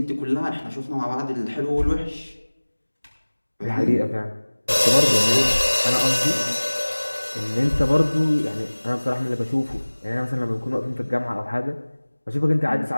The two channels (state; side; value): inverted; both; correlation -1.00